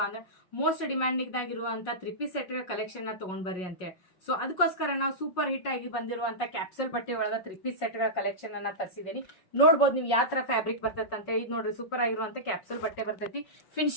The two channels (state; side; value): late; right; 5.5 ms